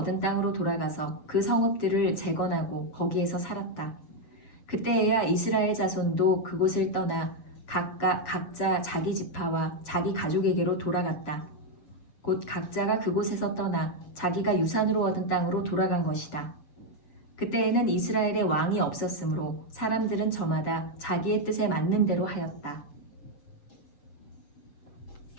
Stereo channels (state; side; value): late; right; 7.0 ms